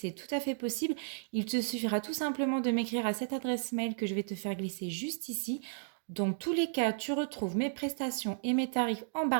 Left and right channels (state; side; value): silent; left; digital silence